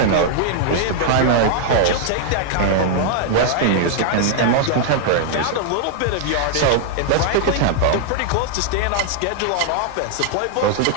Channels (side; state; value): both; different; correlation -0.01